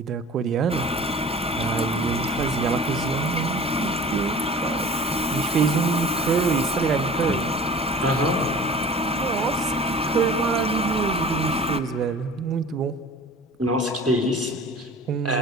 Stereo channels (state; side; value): normal; both; correlation 0.42